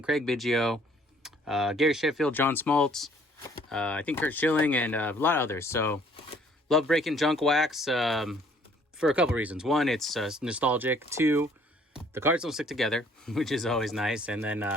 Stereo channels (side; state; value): both; normal; correlation 0.60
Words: Biggio, Gary Sheffield, John Smoltz, I think Curt Schilling, and a lot of others. So, love breaking junk wax for a couple reasons. One, it's nostalgic. Two, the cards don't stick together, which is always nice. And